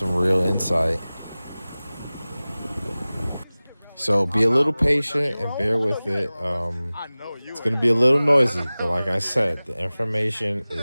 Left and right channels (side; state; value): both; inverted; correlation -0.98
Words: real insight. So be a little patient and bear with it. It's going to be a little noisy, but like I said, the information